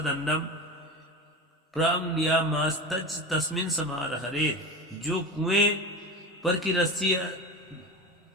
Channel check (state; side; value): normal; both; correlation 0.26